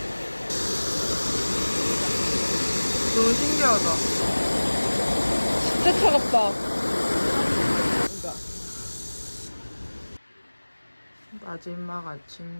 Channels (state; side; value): inverted; both; correlation -1.00